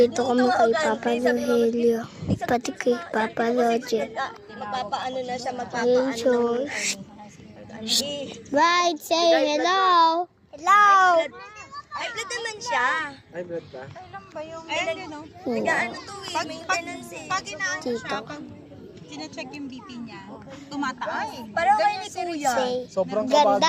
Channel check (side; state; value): both; identical; correlation 1.00